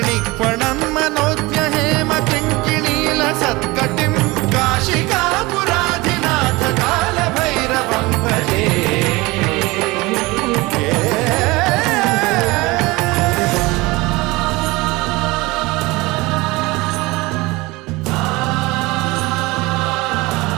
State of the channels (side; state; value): left; quieter; 22.4 dB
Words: मनोज्ञहेम किङ्किणीलसत्कटिं काशिकापुराधिनाथ कालभैरवं भजे